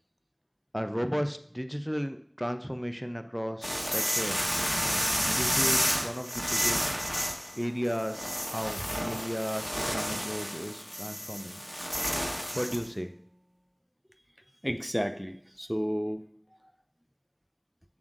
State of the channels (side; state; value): both; identical; correlation 1.00